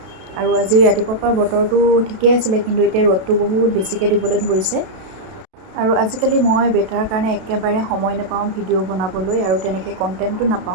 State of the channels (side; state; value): left; late; 32 ms